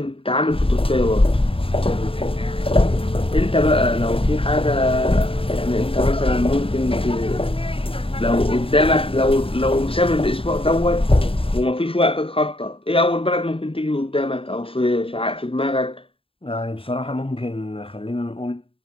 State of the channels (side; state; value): right; late; 0.27 ms